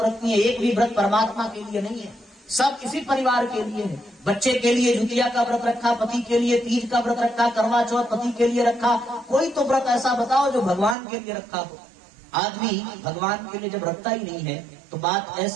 रखती हैं, एक भी व्रत परमात्मा के लिए नहीं है, सब इसी परिवार के लिए है। बच्चे के लिए ज्योतिया का व्रत रखा, पति के लिए तीज का व्रत रखा, करवा चौथ पति के लिए रखा। कोई तो व्रत ऐसा बताओ जो भगवान के लिए रखा हो। आदमी भगवान के लिए जब रखता ही नहीं है तो बात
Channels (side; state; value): left; drops out; at 11.0 s